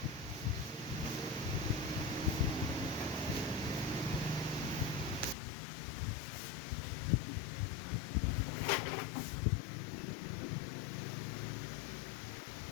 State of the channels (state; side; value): drops out; right; at 5.4 s